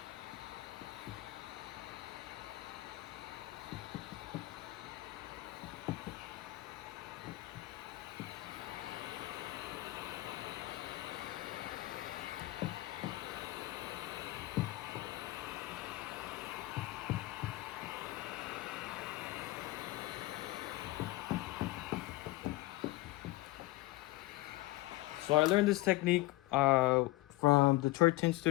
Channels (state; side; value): quieter; right; 18.7 dB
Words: So I learned this technique from Detroit Tint